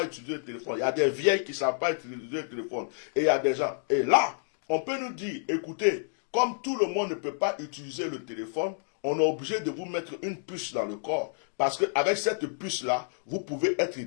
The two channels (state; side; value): silent; right; digital silence